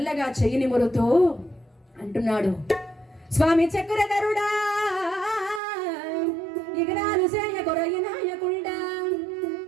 చెయ్యి నిమురుతూ అంటున్నాడు, స్వామి చక్రధరుడా ఇగనాలు సేయ కొరయి నాయకుడా.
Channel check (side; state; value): left; drops out; at 5.6 s